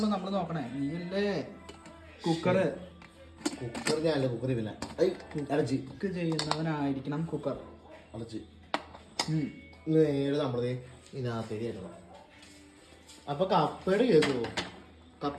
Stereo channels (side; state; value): both; identical; correlation 1.00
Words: നമ്മള് നോക്കണേ. നീയല്ലേ കുക്കർ ഞാനല്ല കുക്കർ ഇല്ല. അടച്ച് കുക്ക് ചെയ്യുന്നവനായിരിക്കണം കുക്കർ. അടച്ച് നേരെ നമ്മളത് ഇതിനകത്തേക്ക് കയറ്റണം. അപ്പൊ കപ്പയുടെ കേസ് കപ്പ